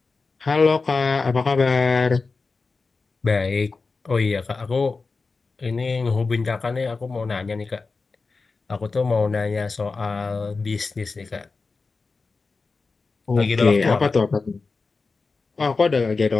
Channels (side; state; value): right; quieter; 4.2 dB